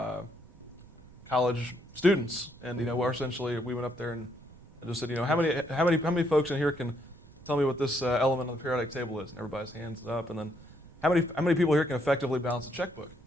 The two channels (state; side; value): noise; right; rumble, 22 dB below the sound